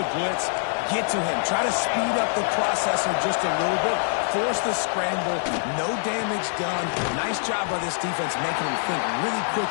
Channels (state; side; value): silent; right; 62 dB below the other